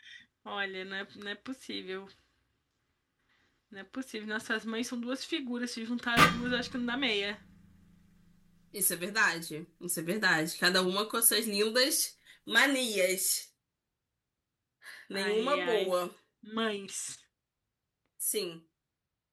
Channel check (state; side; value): identical; both; correlation 1.00